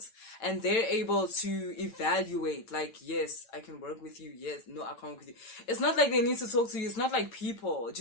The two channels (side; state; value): right; late; 8.9 ms